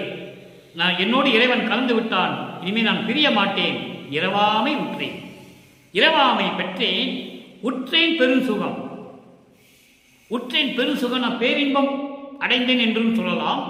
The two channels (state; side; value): identical; both; correlation 1.00